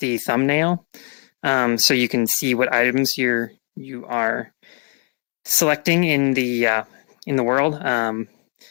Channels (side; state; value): right; quieter; 35.4 dB